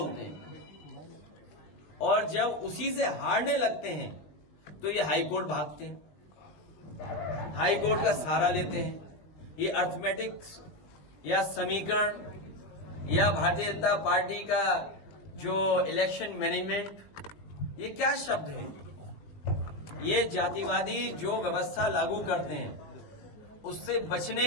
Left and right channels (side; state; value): right; late; 20 ms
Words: हैं, और जब उसी से हारने लगते हैं तो ये हाईकोर्ट भागते हैं, हाईकोर्ट का सहारा लेते हैं। ये अर्थमेटिक्स या समीकरण या भारतीय जनता पार्टी का जो इलेक्शन मैनेजमेंट, ये क्या शब्द है? ये जातिवादी जो व्यवस्था लागू करते हैं उससे बचने